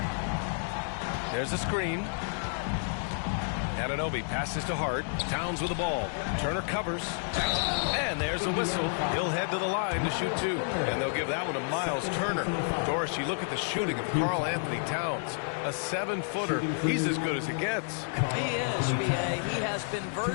There's a screen. Anunoby passes to Hart. Towns with the ball. Turner covers. And there's a whistle. He'll head to the line to shoot 2. And they'll give that one to Miles Turner. Doris, you look at the shooting of Karl Anthony Towns. A 7-footer. He's as good as it gets. He is, B.A. He has been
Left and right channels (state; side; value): silent; right; 58 dB below the other